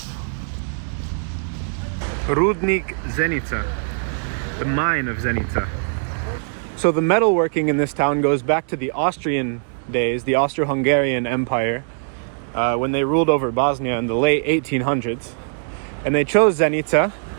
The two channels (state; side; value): silent; left; 65 dB below the other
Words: Rudnik Zenica, the mine of Zenica. So the metalworking in this town goes back to the Austrian days, the Austro-Hungarian Empire, when they ruled over Bosnia in the late 1800s. And they chose Zenica